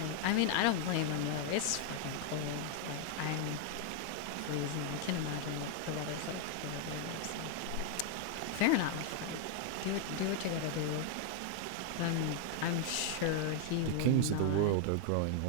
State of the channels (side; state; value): both; different; correlation 0.00